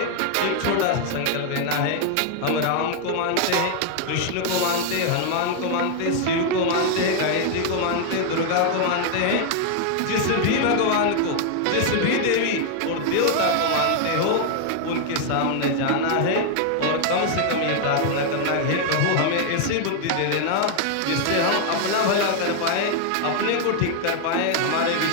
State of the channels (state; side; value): different; both; correlation 0.00